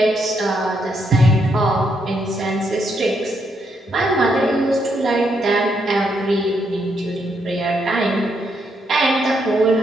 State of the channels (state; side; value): normal; both; correlation 0.77